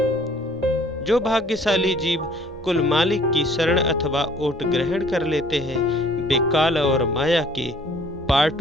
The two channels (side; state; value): both; normal; correlation 0.56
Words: जो भाग्यशाली जीव कुल मालिक की शरण अथवा ओट ग्रहण कर लेते हैं, वे काल और माया के